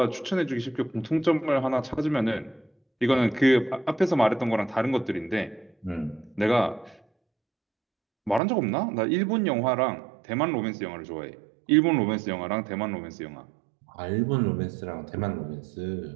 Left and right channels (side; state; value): left; drops out; at 8.4 s